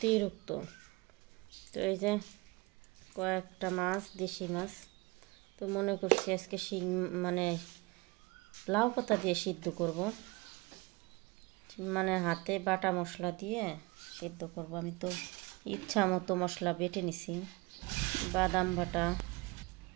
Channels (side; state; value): left; quieter; 24.7 dB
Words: তো এই যে কয়েকটা মাছ, দেশি মাছ। তো মনে করছি আজকে শিং মানে লাউ পাতা দিয়ে সিদ্ধ করব, মানে হাতে বাটা মশলা দিয়ে সিদ্ধ করব। আমি তো ইচ্ছা মতো মশলা বেটে নিছি, বাদাম